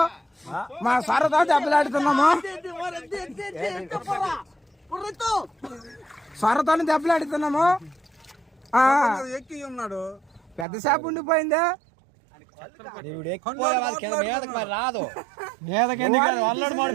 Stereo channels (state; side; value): drops out; left; at 10.7 s